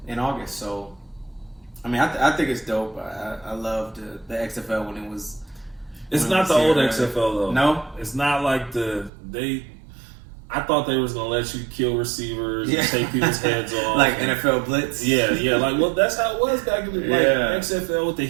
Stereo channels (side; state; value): left; drops out; at 9.1 s